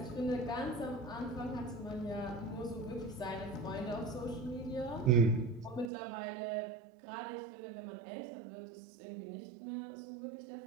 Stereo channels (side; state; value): left; drops out; at 5.9 s